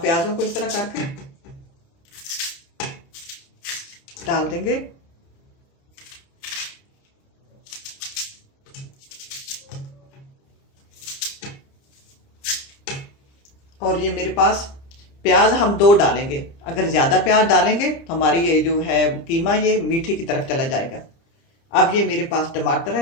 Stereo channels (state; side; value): late; right; 30 ms